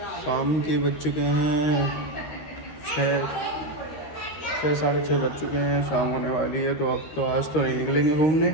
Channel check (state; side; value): late; right; 13 ms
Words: शाम के बज चुके हैं 6 साढ़े 6 बज चुके हैं। शाम होने वाली है तो अब तो आज तो नहीं निकलेंगे घूमने।